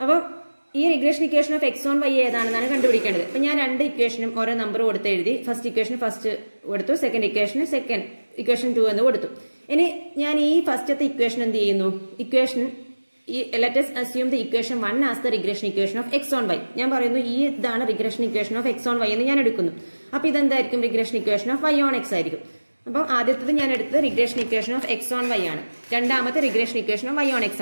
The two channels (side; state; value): both; inverted; correlation -1.00